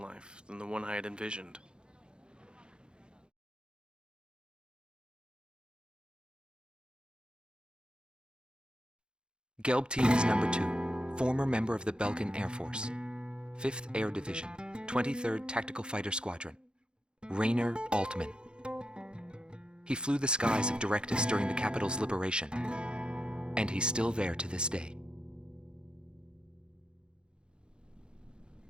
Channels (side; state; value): left; late; 0.051 ms